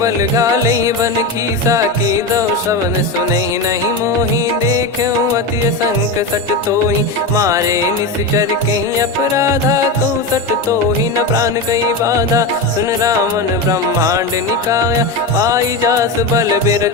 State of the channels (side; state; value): right; quieter; 3.0 dB